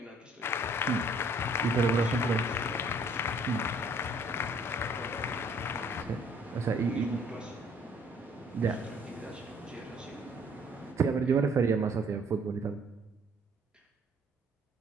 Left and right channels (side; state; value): both; normal; correlation 0.60